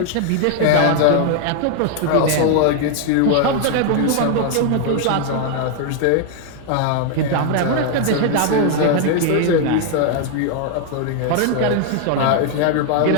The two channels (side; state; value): both; different; correlation 0.00